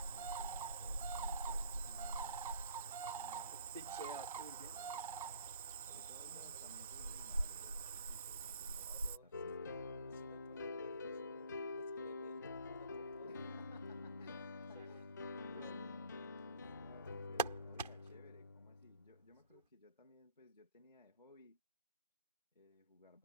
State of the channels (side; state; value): both; inverted; correlation -0.54